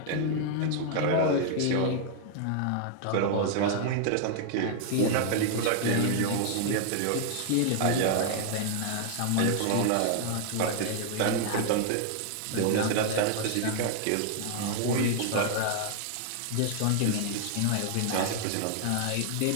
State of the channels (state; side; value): different; both; correlation 0.00